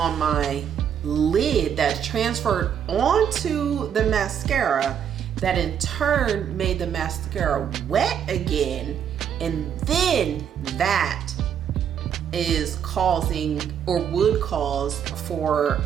my lid that transferred onto the mascara, that in turn made the mascara wet again, and then that is causing, or would cause, for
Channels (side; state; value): left; quieter; 8.6 dB